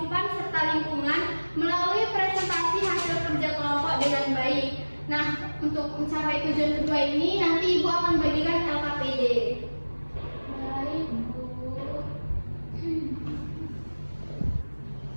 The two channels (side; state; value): both; inverted; correlation -1.00